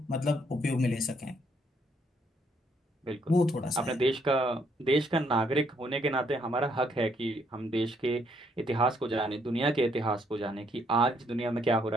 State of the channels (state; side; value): normal; both; correlation 0.70